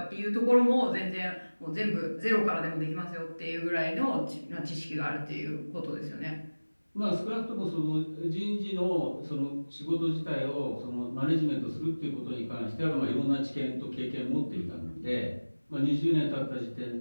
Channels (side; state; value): both; inverted; correlation -1.00